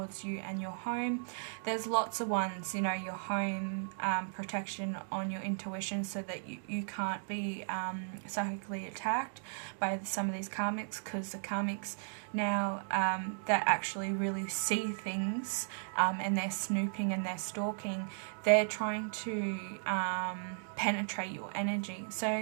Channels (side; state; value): left; silent; digital silence